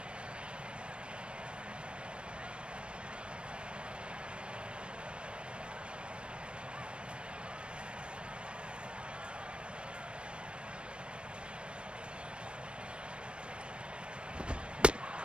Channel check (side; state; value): left; late; 0.058 ms